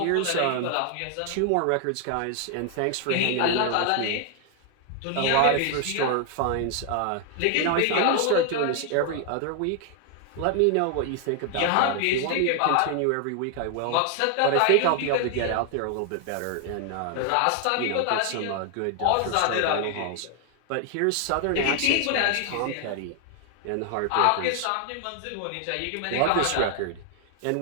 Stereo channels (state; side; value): different; both; correlation 0.00